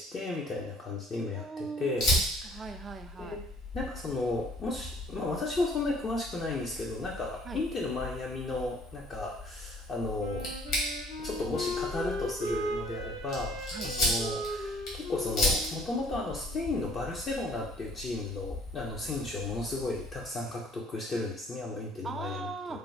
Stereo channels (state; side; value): normal; both; correlation 0.58